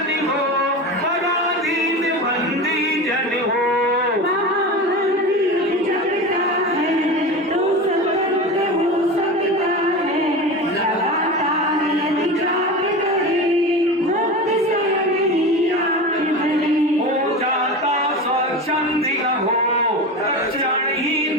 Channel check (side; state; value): both; normal; correlation 0.27